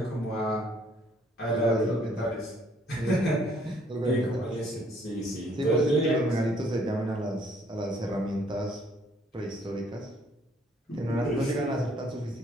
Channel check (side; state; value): both; normal; correlation 0.63